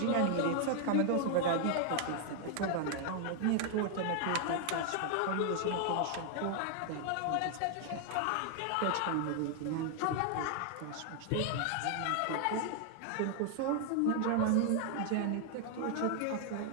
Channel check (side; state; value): both; different; correlation 0.00